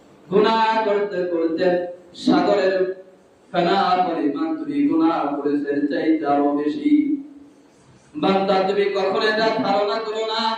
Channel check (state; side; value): identical; both; correlation 1.00